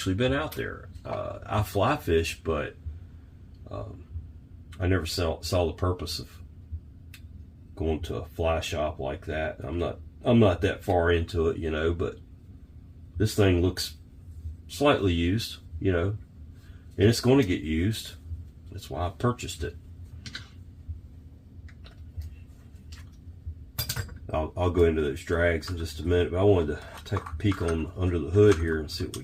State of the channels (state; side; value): identical; both; correlation 1.00